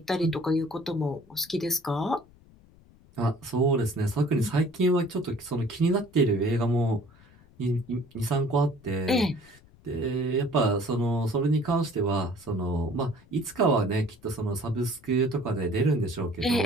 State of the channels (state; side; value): noise; left; rumble, 26 dB below the sound